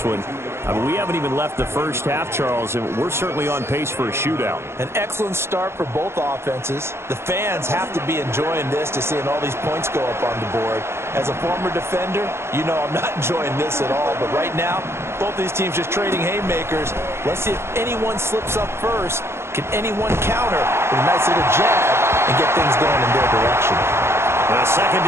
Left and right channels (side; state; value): left; late; 0.12 ms